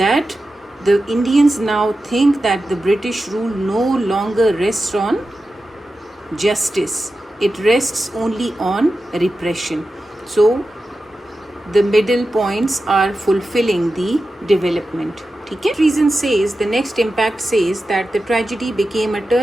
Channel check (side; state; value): both; normal; correlation 0.92